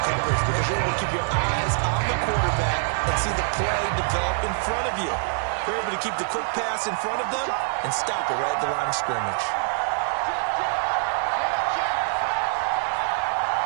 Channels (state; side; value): silent; left; digital silence